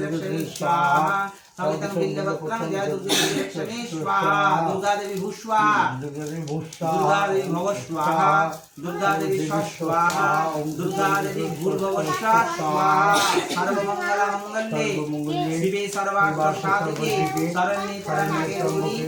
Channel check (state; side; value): identical; both; correlation 1.00